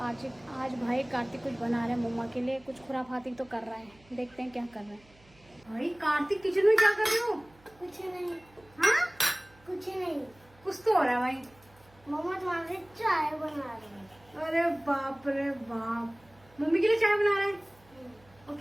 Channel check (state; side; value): noise; right; hum, 28 dB below the sound